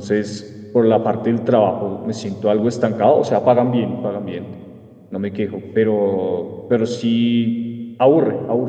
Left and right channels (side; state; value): both; identical; correlation 1.00